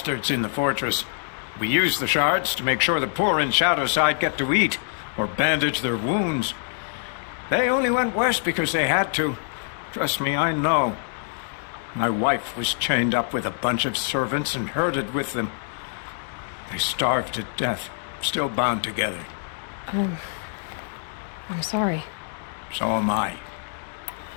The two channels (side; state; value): right; silent; 62 dB below the other